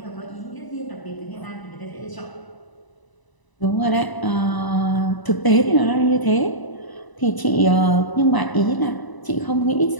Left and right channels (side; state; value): right; late; 1.0 ms